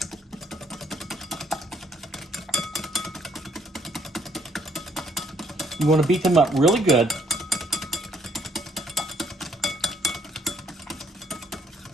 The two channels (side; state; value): both; normal; correlation 0.67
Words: You want to beat them up really good.